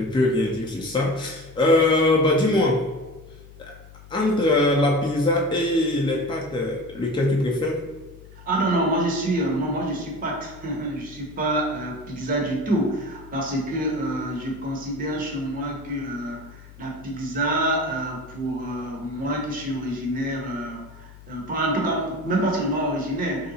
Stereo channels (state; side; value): noise; left; hum, 20 dB below the sound